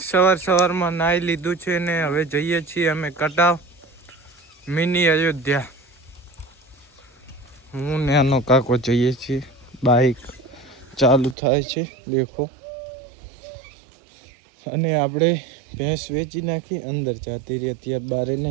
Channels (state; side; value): drops out; left; at 11.4 s